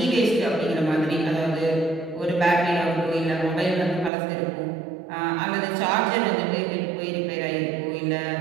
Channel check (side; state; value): left; drops out; at 4.1 s